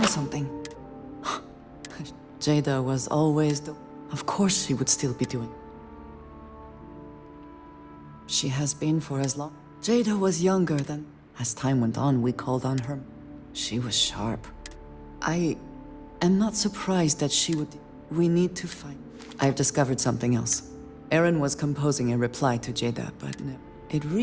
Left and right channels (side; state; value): both; identical; correlation 1.00